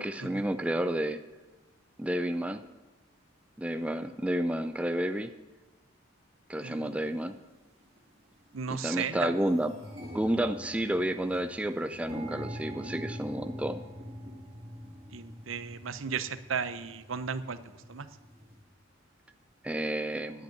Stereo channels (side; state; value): both; normal; correlation 0.76